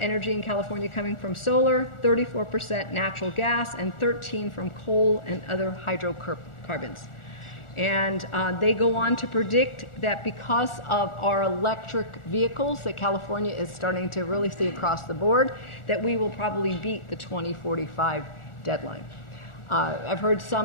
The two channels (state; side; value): late; right; 1.4 ms